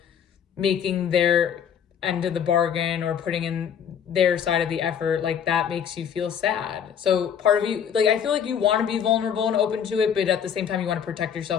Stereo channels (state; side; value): quieter; right; 8.0 dB